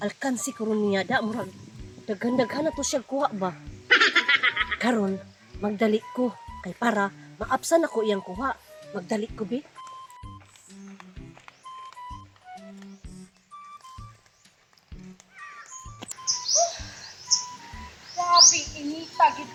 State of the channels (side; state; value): both; identical; correlation 1.00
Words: Alkansi ko ron niya da, murag daghan-daghan na to siya kuha ba. Karon, magdali ko. Kay para, maapsan ako iyang kuha. Magdali ko, be. Grabe, inita, gid.